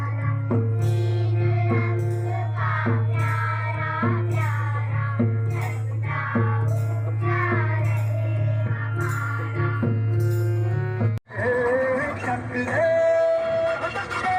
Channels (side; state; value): both; identical; correlation 1.00